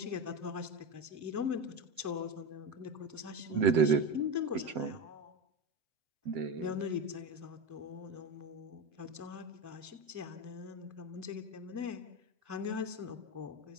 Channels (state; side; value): late; left; 7.8 ms